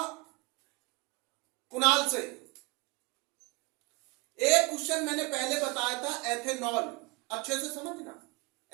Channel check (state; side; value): quieter; left; 26.5 dB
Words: कुणाल से। एक क्वेश्चन मैंने पहले बताया था, एथेनॉल, अच्छे से समझना।